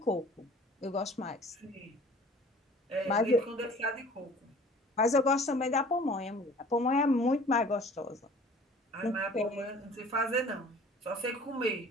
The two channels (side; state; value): both; normal; correlation 0.48